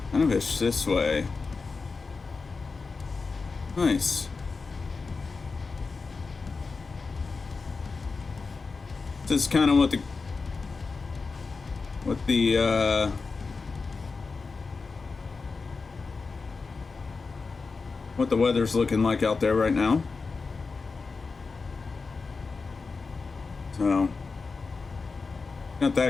kind of ish this way. Nice. This is kind of what the weather's looking like out there right now. So got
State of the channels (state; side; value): quieter; right; 4.4 dB